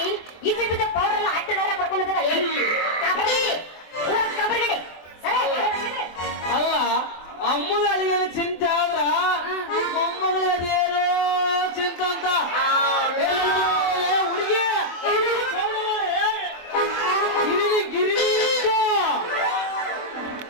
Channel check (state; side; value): late; right; 24 ms